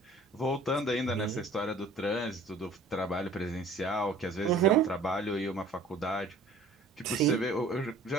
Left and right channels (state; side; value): quieter; left; 3.2 dB